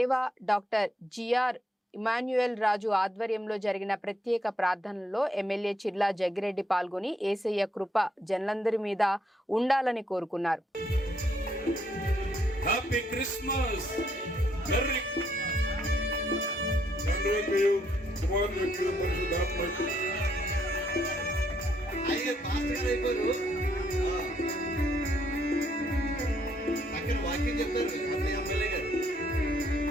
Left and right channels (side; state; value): both; normal; correlation 0.73